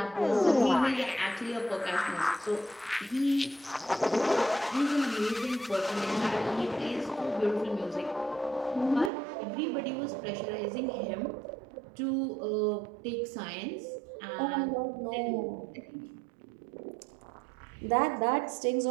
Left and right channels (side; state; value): left; drops out; at 9.1 s